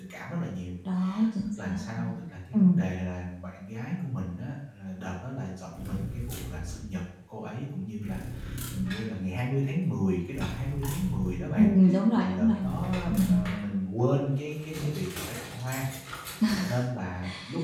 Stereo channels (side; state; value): both; identical; correlation 1.00